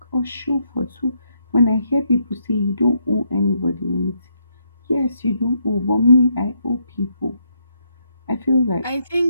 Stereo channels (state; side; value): inverted; both; correlation -0.76